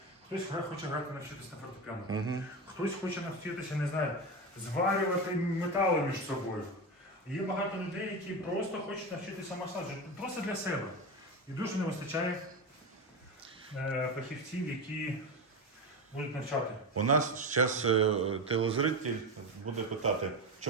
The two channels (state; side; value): normal; both; correlation 0.19